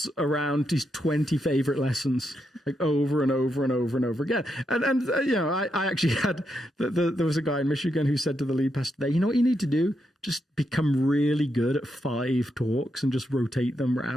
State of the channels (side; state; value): both; normal; correlation 0.82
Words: around his 20 favorite lessons, like over and over and over and over again. And I actually had, there was a guy in Michigan who said to the lead pastor there, you know what you need to do? Just become really good at 5 talks and just rotate them